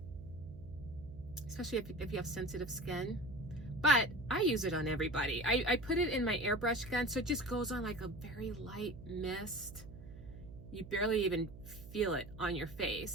Especially if you have sensitive skin. But I use it on everybody. I put it in my airbrush gun, so it just goes on like a very light mist. You barely even feel it on your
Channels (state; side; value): noise; right; hum, 15 dB below the sound